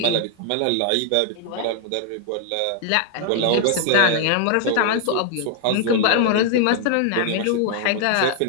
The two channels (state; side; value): different; both; correlation 0.00